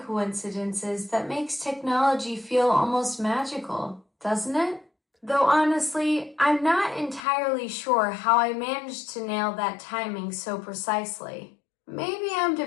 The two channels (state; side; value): drops out; right; at 7.2 s